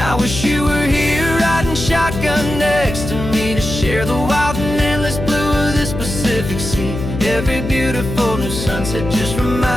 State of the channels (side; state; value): left; noise; hum, 7 dB below the sound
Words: wish you were here riding shotgun next to me, to share the wild and endless blue of this Pacific Sea. Every beautiful new sunset just